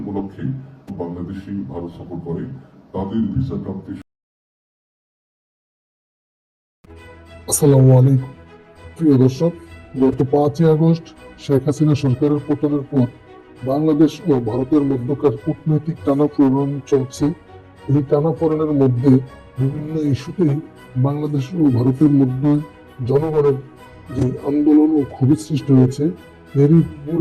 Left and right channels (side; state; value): both; identical; correlation 1.00